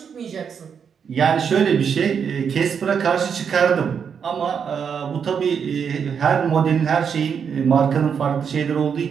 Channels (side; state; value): left; quieter; 7.0 dB